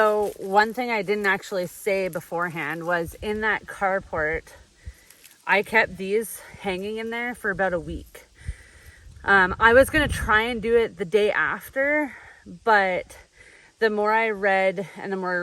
one thing I didn't actually say beforehand was, in that carport, I kept these hanging in there for about a week. I was going to try and do it the day after, but the more I read and the more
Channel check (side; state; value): both; identical; correlation 1.00